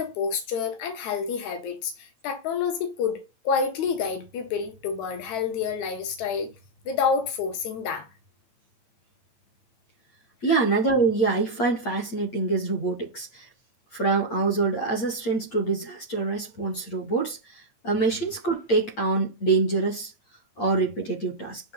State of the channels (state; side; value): late; right; 8.7 ms